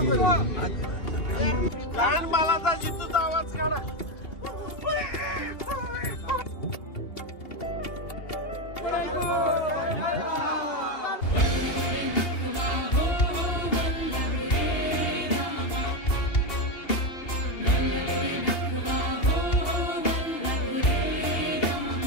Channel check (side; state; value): right; late; 2.8 ms